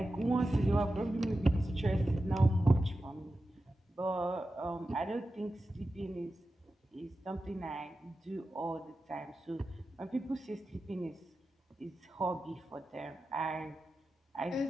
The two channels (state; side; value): normal; both; correlation 0.92